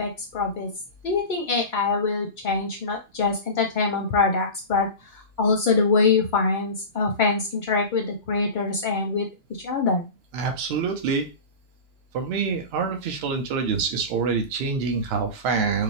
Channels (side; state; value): left; late; 2.9 ms